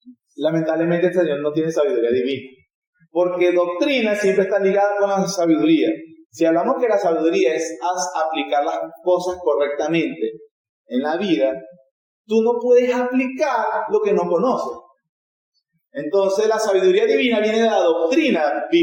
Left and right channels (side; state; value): both; identical; correlation 1.00